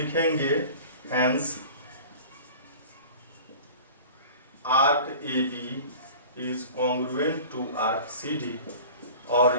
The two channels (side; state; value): both; inverted; correlation -0.40